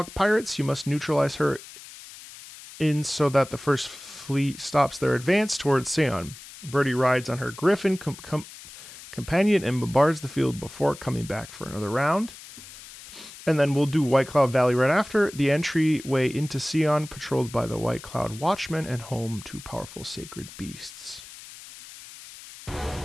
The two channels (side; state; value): left; noise; hiss, 16 dB below the sound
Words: pirates, you must neutralize her in so that the first fleet stops their advance towards Seon. Birdie rides on her griffin companion and bombards the field before coming back for another round. And then we'll do White Cloud Valley right after. The entryway into Seon, patrolled by the White Cloud Watchmen and home to powerful sacred beasts.